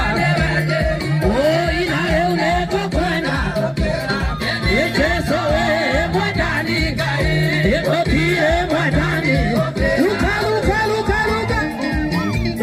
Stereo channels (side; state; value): both; identical; correlation 1.00